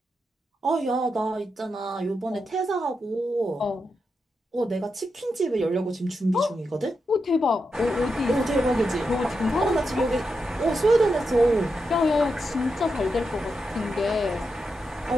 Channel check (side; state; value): both; normal; correlation 0.86